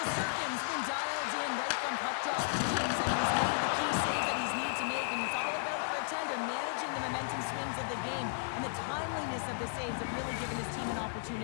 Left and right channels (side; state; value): right; silent; 55 dB below the other